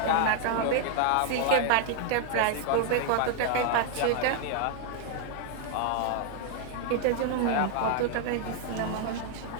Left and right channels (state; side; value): different; both; correlation 0.00